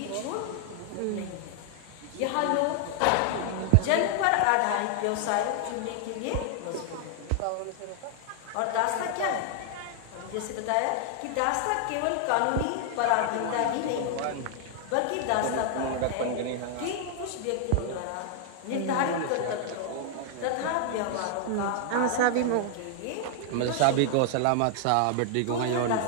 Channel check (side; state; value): both; different; correlation 0.00